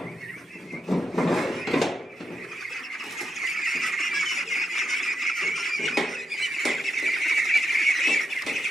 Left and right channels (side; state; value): both; normal; correlation 0.84